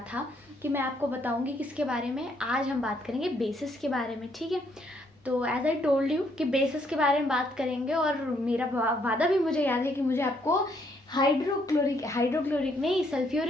था कि मैं आपको बताऊंगी किसके बारे में। आज हम बात करेंगे बेसिस के बारे में, ठीक है। तो एज आई टोल्ड यू कि बेसिस के बारे में बात करेंगे और मेरा वादा भी मुझे याद है कि मुझे आपको हाइड्रोक्लोरिक नहीं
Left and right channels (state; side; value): normal; both; correlation 0.71